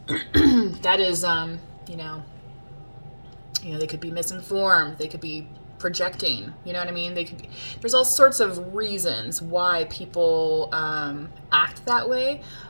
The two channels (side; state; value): both; inverted; correlation -1.00